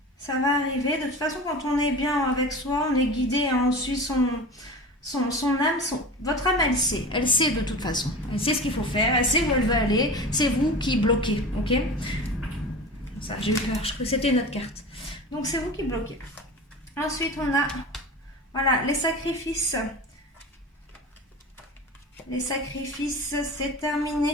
Ça va arriver. De toute façon, quand on est bien avec soi, on est guidé, on suit son âme. Votre âme, elle sait de toute façon. Elle sait ce qu'il faut faire, elle sait où elle veut aller. C'est vous qui bloquez, ok? Ça, j'ai eu peur, je crois que c'était notre carte. Donc c'est vous qui bloquez. Ensuite, on a... Voilà, les sacrifices. Les sacrifices, c'est terminé.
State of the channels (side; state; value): both; normal; correlation 0.33